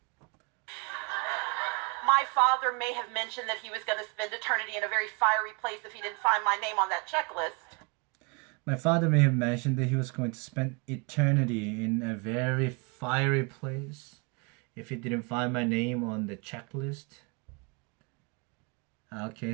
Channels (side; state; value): left; quieter; 31.9 dB